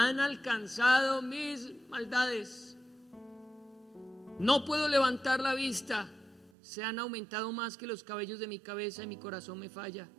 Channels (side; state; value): left; drops out; at 6.5 s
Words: alcanzado mis maldades. No puedo levantar la vista, se han aumentado más que los cabellos de mi cabeza y mi corazón me falla.